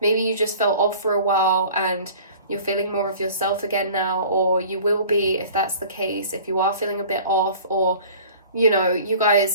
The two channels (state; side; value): inverted; both; correlation -0.45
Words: maybe you just felt off for a while and you're feeling more of yourself again now, or you will be if that's the case, if you are feeling a bit off. Or, you know, you